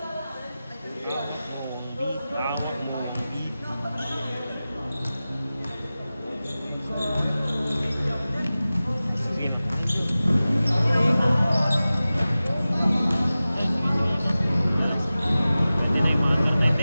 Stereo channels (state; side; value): inverted; both; correlation -0.96